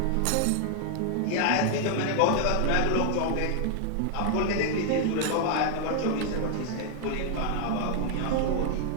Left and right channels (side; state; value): both; different; correlation 0.00